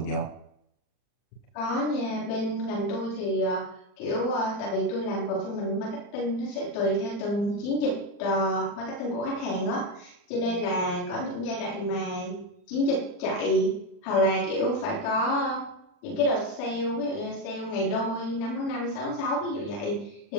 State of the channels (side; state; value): right; late; 40 ms